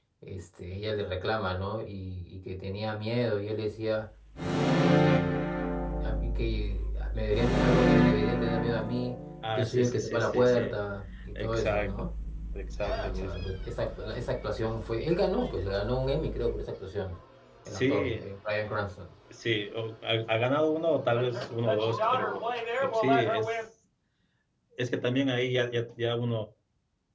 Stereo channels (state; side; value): identical; both; correlation 1.00